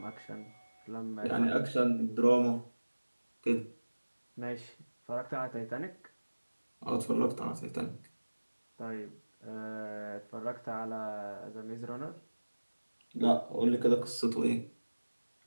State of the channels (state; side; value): inverted; both; correlation -1.00